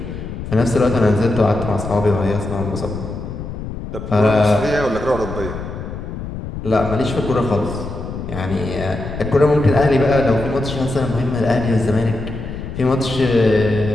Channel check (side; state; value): left; noise; rumble, 8 dB below the sound